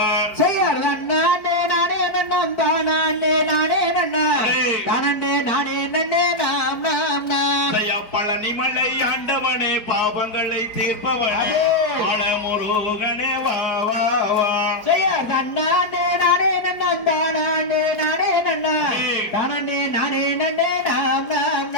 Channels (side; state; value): right; late; 4.5 ms